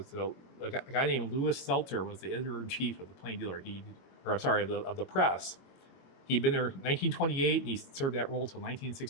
guy named Louis Seltzer was the editor-in-chief of the Plain Dealer. Of the Press. He'd been there in 1928, and he served that role until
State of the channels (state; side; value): late; right; 22 ms